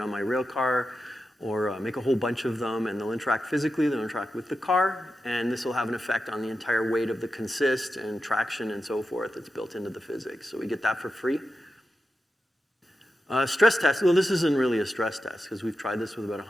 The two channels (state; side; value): normal; both; correlation 0.90